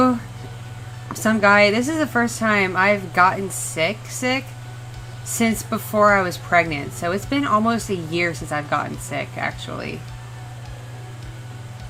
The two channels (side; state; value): both; identical; correlation 1.00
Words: some guy, this is the first time I've gotten sick since before I was pregnant. So it's been almost a year since I've gotten sick, actually.